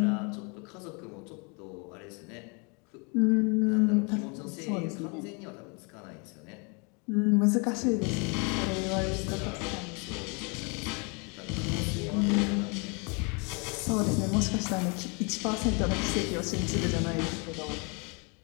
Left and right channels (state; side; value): quieter; right; 33.1 dB